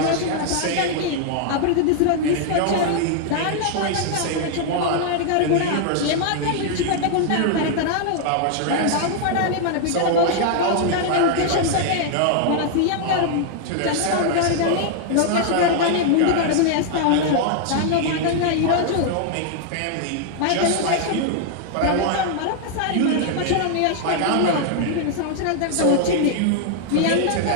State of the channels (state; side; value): different; both; correlation 0.00